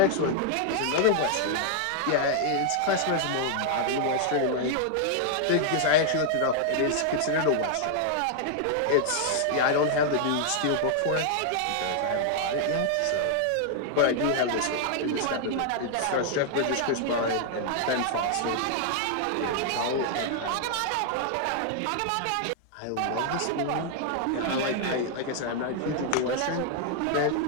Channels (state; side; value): different; both; correlation 0.00